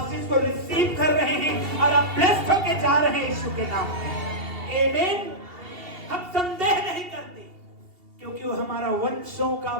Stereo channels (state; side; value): late; left; 2.7 ms